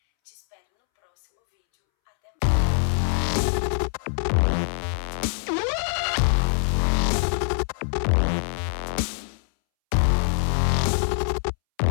Te espero no próximo vídeo. Até mais!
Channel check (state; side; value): silent; right; 63 dB below the other